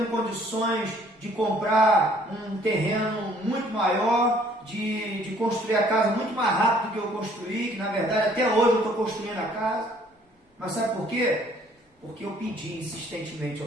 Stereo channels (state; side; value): normal; both; correlation 0.60